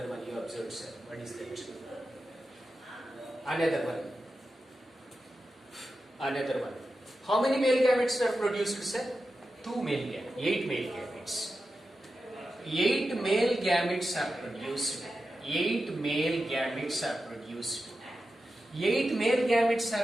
one you observed, sir. What is that? Another one. Another one. How many male gametes are produced, sir? 2 male gametes. 8 male gametes. 8 male gametes are produced. 8 male gametes are produced. 8 male gametes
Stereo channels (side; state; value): both; normal; correlation 0.91